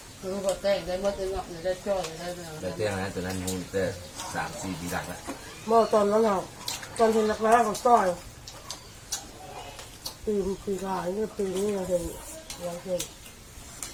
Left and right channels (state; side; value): identical; both; correlation 1.00